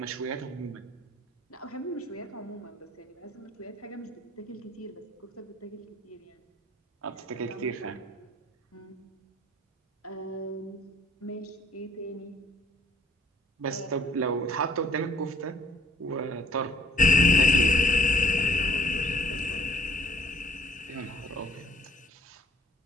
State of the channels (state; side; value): normal; both; correlation 0.59